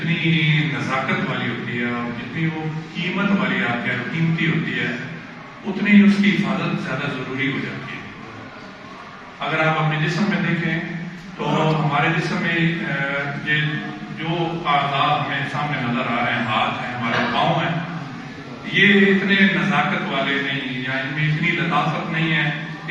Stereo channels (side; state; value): both; identical; correlation 1.00